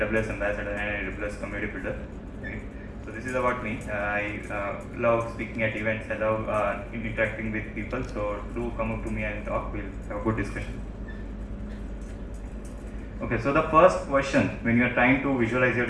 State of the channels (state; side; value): identical; both; correlation 1.00